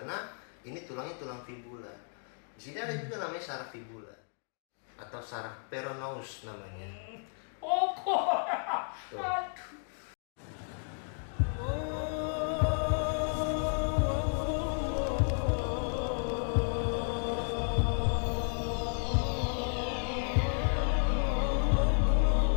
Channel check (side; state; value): right; silent; 56 dB below the other